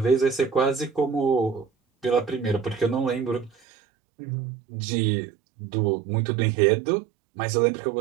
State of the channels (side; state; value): left; drops out; at 3.5 s